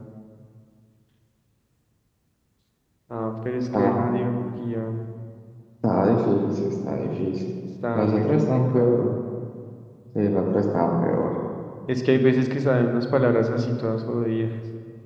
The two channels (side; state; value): both; identical; correlation 1.00